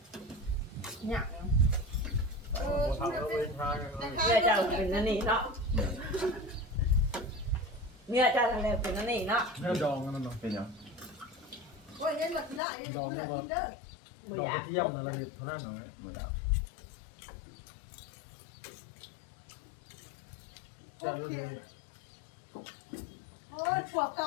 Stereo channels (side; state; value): right; drops out; at 12.6 s